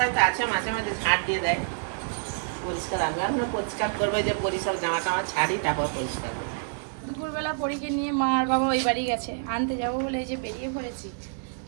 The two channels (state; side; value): silent; left; digital silence